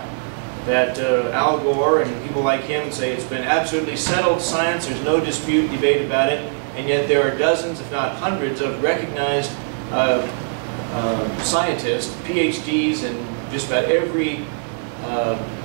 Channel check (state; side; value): silent; left; 65 dB below the other